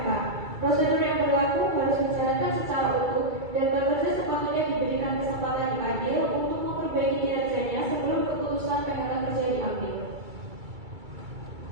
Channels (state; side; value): late; left; 2.3 ms